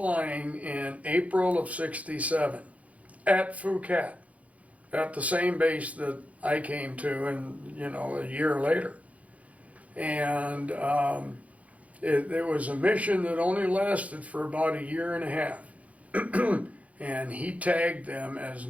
in April of '67 at Phuket, at the same base that I came to, and a year later. And it was a mission that only lasted for about a year and a half. And he tagged them as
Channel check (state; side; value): late; left; 0.067 ms